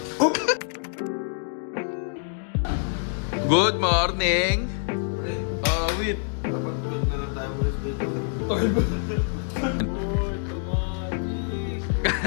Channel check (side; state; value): right; silent; 61 dB below the other